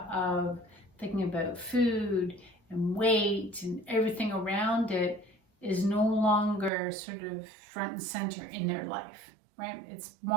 of thinking about food and weight and everything around it is no longer sort of front and center in their life, right? It's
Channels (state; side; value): drops out; left; at 6.7 s